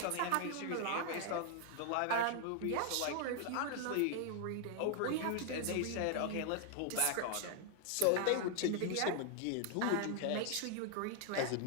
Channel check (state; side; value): different; both; correlation 0.00